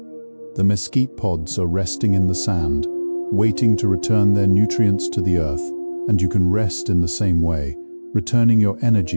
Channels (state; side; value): inverted; both; correlation -1.00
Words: The mesquite pods are resting in the sand, waiting to return their nutrients to the earth, and you can rest in the same way, returning your